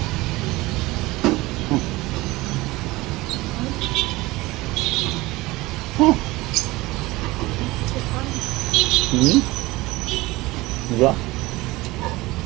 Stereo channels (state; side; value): quieter; left; 20.3 dB